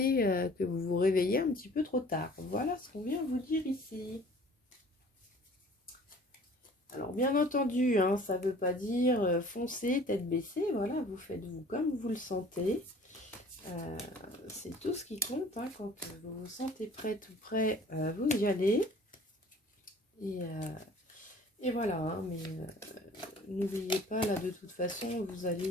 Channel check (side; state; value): both; normal; correlation 0.50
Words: que vous vous réveillez un petit peu trop tard. Voilà ce qu'on vient vous dire ici. Alors bien entendu, hein, ça ne veut pas dire foncer, tête baissée, voilà, vous faites vous comme vous le sentez. C'est tout ce qui compte, hein, quand vous vous sentez prête ou prêt, vous y allez. Et voilà, hein, mais n'oubliez pas, là de toute façon, vous